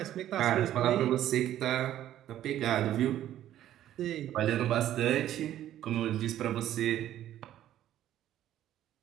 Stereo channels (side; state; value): left; quieter; 12.2 dB